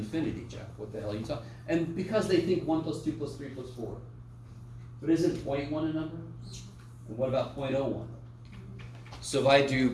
Jeff. What the hell are you talking? And because they think 1 plus 2 plus 3 plus 4. But isn't 0.1 a number? And what about 0.01? So if I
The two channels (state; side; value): identical; both; correlation 1.00